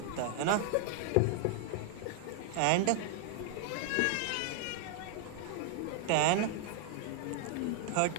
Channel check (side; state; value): both; different; correlation 0.00